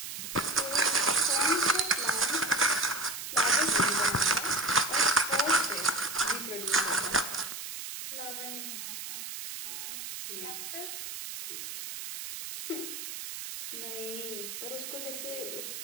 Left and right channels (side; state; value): right; noise; hiss, 8 dB below the sound